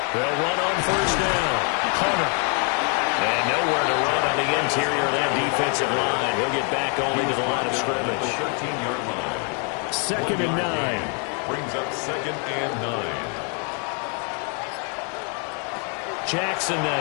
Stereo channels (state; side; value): quieter; right; 39.3 dB